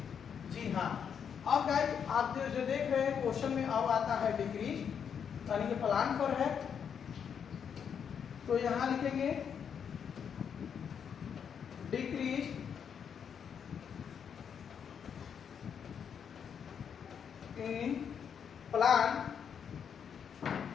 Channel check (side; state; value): right; quieter; 7.5 dB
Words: जी हाँ, अब गाइस आप जो देख रहे हैं क्वेश्चन में अब आता है डिक्रीज, यानी कि प्लान पर है, तो यहां लिखेंगे डिक्रीज इन प्लान